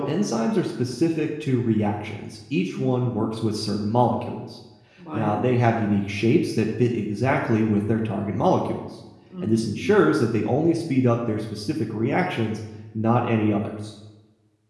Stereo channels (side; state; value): both; identical; correlation 1.00